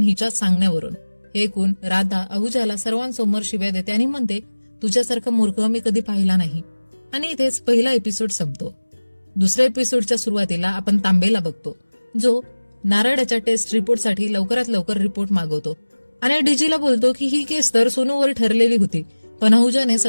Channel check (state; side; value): inverted; both; correlation -1.00